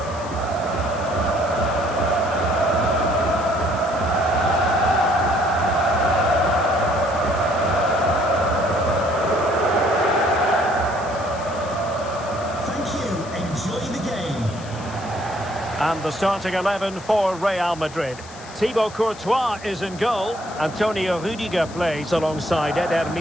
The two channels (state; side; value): noise; left; hiss, 19 dB below the sound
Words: Enjoy the game. And the starting 11 for Real Madrid. Thibaut Courtois is in goal. Antonio Rüdiger plays alongside Eder